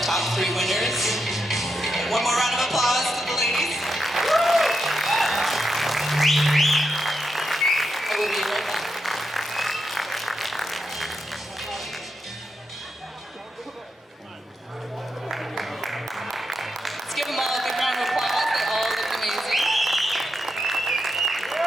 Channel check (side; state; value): both; normal; correlation 0.85